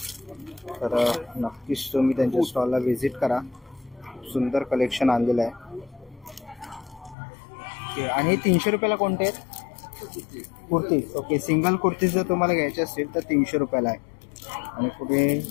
तर नक्कीच तुम्ही त्यांच्या स्टॉलला व्हिजिट करा. सुंदर कलेक्शन आणलेलं आहे. ओके आणि 300 रुपयाला कोणते आहेत? कुर्तीज. ओके सिंगल कुर्तीज जर तुम्हाला घ्यायचे असतील तर 300 रुपयाला आहे. आणि पुढे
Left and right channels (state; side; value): drops out; right; at 7.2 s